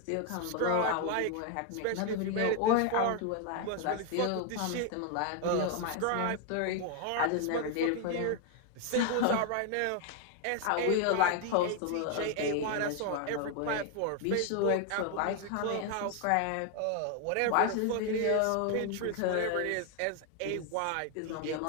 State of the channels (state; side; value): different; both; correlation 0.01